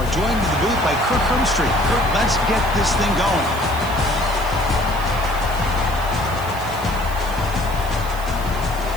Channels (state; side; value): noise; left; hiss, 18 dB below the sound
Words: joined in the booth by Kirk Hermstreet. Kirk, let's get this thing going.